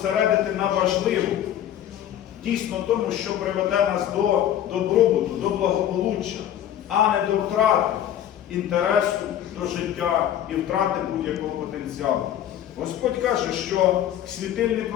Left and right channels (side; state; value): right; quieter; 11.0 dB